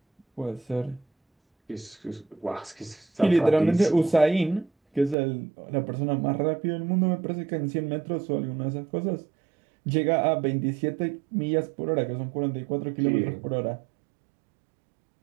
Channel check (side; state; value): left; drops out; at 5.2 s